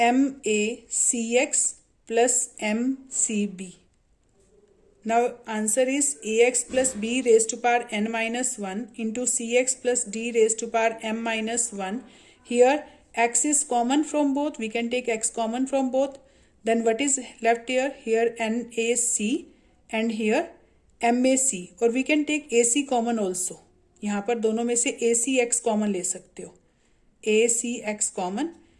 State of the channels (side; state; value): both; identical; correlation 1.00